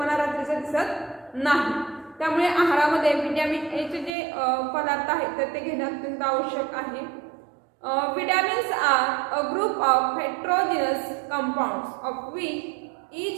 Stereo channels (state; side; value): drops out; left; at 4.1 s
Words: रात्रीचं दिसत नाही. त्यामुळे आहारामध्ये व्हिटॅमिन एचे जे पदार्थ आहेत तर ते घेणं अत्यंत आवश्यक आहे. Vitamins are a group of heterogeneous compounds of which